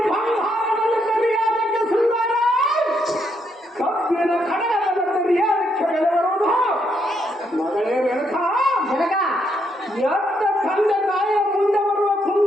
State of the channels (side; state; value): both; normal; correlation 0.76